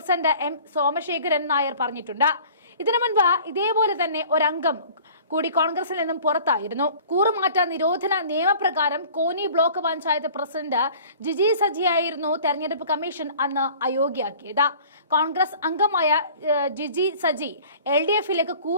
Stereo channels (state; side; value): inverted; both; correlation -0.47